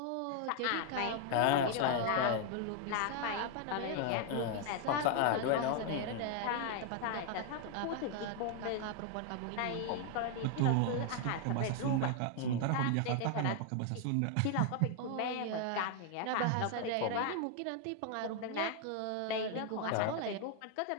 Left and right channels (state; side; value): different; both; correlation 0.00